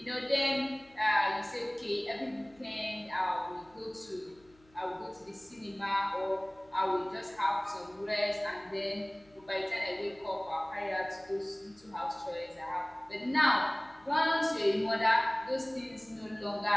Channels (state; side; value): noise; left; hum, 30 dB below the sound